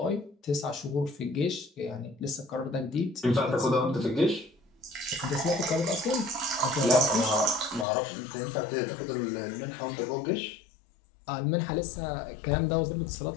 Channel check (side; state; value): right; drops out; at 7.9 s